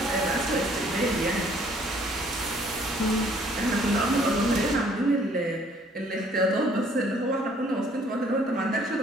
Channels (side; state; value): both; normal; correlation 0.60